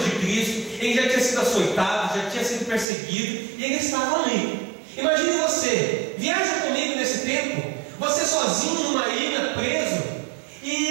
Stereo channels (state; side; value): drops out; left; at 2.9 s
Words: de Cristo, ele já tinha sido açoitado, já tinha sido perseguido, e ele estava ali. Imagine você, viaja comigo nesse tempo, você sozinho numa ilha, preso.